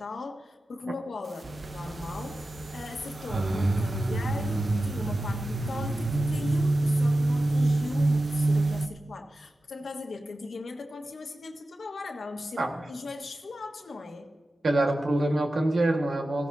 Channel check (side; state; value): both; normal; correlation 0.93